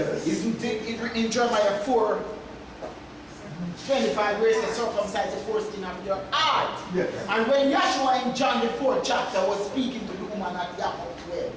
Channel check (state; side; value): identical; both; correlation 1.00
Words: Isn't it in Jeremiah 4:25 where it says circumcise the foreskin of your heart? Yes. And when Yahshua in John the 4th chapter was speaking to the woman at Yaakov 12,